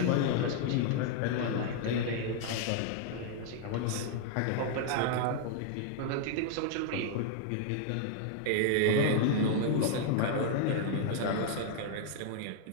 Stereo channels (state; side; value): different; both; correlation 0.00